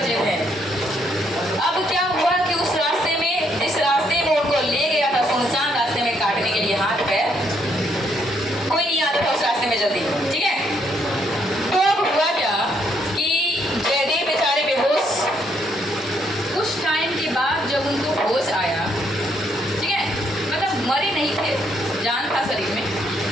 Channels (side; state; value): both; normal; correlation 0.72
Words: थे। अब क्या हुआ कि उस रास्ते में, जिस रास्ते में उनको ले गया था सुनसान रास्ते में काटने के लिए हाथ पैर, कोई नहीं आता था उस रास्ते में जल्दी, ठीक है। तो अब हुआ क्या कि जयदेव बेचारे बेहोश। कुछ टाइम के बाद जब उनको होश आया, ठीक है, मतलब मरे नहीं थे, जान था शरीर में।